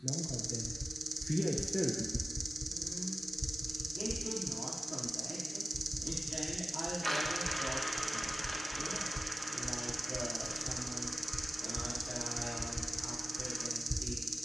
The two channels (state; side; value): normal; both; correlation 0.95